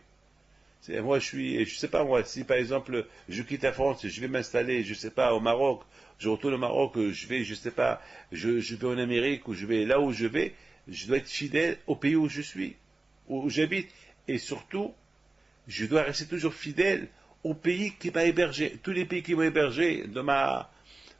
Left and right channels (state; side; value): quieter; left; 3.1 dB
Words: Moi, je sais pas moi, si par exemple je quitte la France, je vais m'installer, je sais pas, au Maroc, je retourne au Maroc, je vais, je sais pas, je vais en Amérique ou je vais là où je vais. Je dois être fidèle au pays où je suis, où j'habite. Et surtout, je dois rester toujours fidèle au pays qui m'a hébergé. Tous les pays qui m'ont hébergé